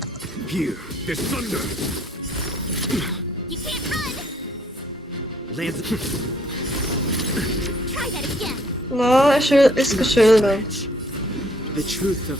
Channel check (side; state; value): both; normal; correlation 0.64